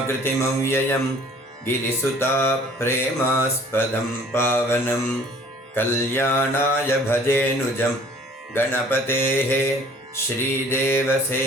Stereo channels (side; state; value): both; normal; correlation 0.53